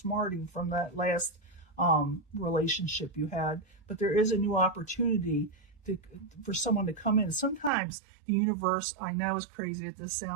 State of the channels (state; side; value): drops out; left; at 7.7 s